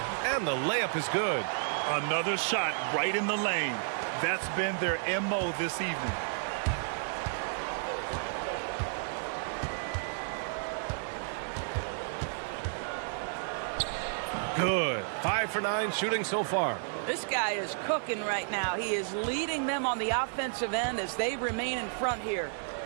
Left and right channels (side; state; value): left; silent; digital silence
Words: And the layup is good. Another shot right in the lane. That's been their MO this evening. Good. 5 for 9 shooting so far. This guy is cooking right now. He is leading them on the offensive end as they remain in front here.